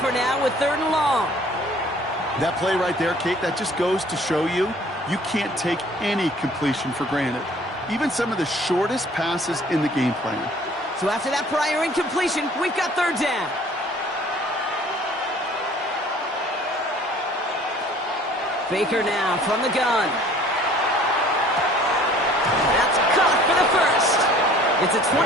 now with 3rd and long. That play right there, Kate, that just goes to show you can't take any completion for granted. Even some of the shortest passes in the game plan. So after that prior incompletion, we've got 3rd down. Baker now from the gun. That's caught for the first. It's a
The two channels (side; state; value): both; normal; correlation 0.53